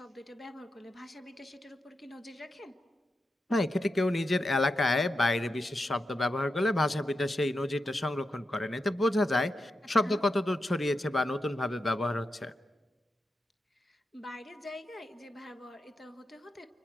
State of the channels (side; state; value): both; normal; correlation 0.88